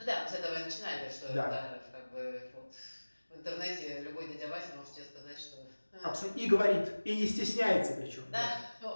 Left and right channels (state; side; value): inverted; both; correlation -1.00